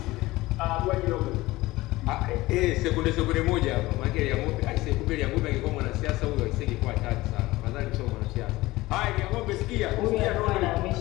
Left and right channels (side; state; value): right; quieter; 19.1 dB